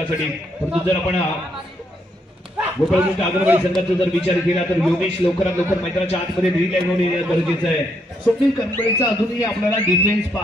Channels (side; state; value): both; normal; correlation 0.75